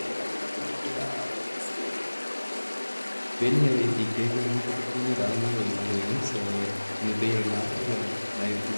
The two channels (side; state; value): both; inverted; correlation -1.00